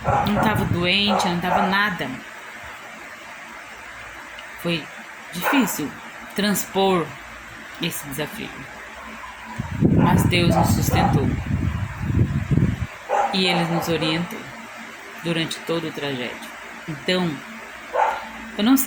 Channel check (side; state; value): both; identical; correlation 1.00